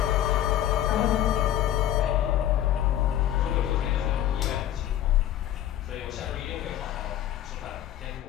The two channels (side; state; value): right; quieter; 12.0 dB